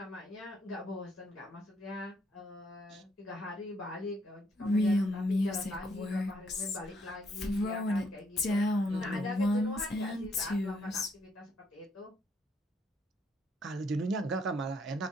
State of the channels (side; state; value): both; normal; correlation 0.72